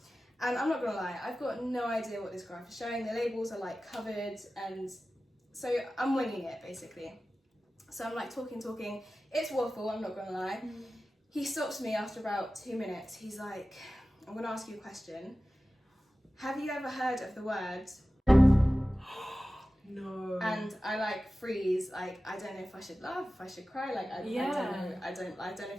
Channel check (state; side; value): normal; both; correlation 0.95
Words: And I'm not gonna lie, I've got no idea what this graph is showing. The labels are like covered, and so I'm winging it basically. So I'm like talking. It's waffle, I'm not gonna lie. He stops me after about 2 minutes. He's like, I'm gonna ask you a question. Have you ever heard of the word? No. And I like freeze, like I don't know if I should laugh, if I should cry, like I don't know. I don't know